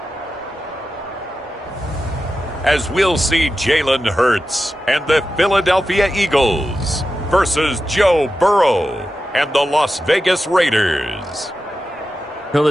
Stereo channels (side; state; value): both; normal; correlation 0.91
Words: As we'll see Jalen Hurts and the Philadelphia Eagles versus Joe Burrow and the Las Vegas Raiders. Well, the